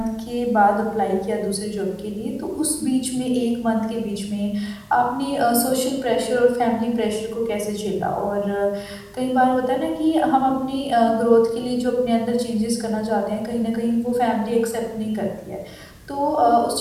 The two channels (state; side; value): identical; both; correlation 1.00